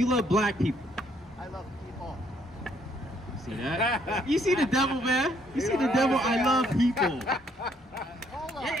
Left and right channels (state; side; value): normal; both; correlation 0.68